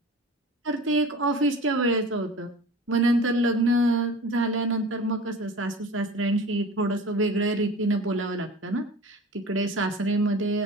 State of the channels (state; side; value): normal; both; correlation 0.38